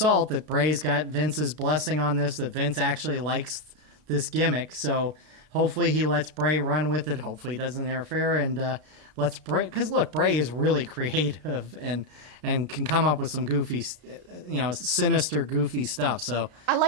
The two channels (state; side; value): late; left; 33 ms